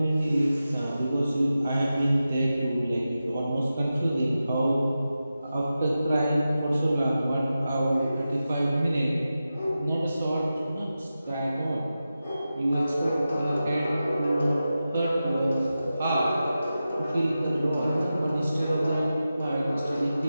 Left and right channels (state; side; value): inverted; both; correlation -0.92